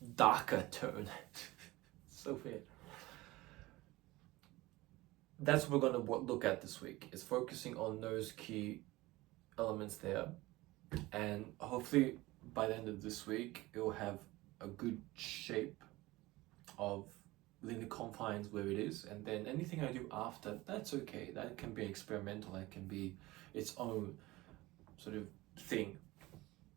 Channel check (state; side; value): quieter; left; 19.6 dB